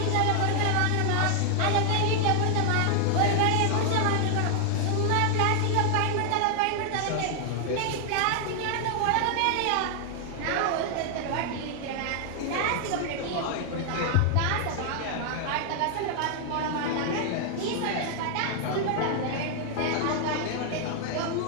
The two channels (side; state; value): both; different; correlation 0.00